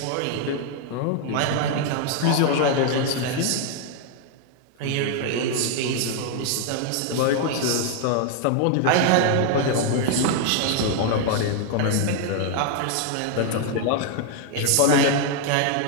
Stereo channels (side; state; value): both; different; correlation 0.00